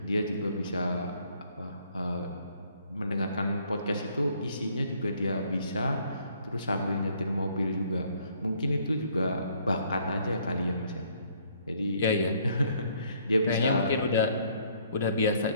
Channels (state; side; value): inverted; both; correlation -0.64